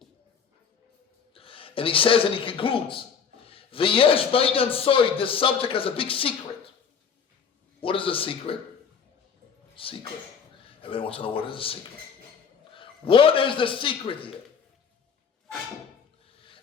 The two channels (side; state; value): right; quieter; 6.6 dB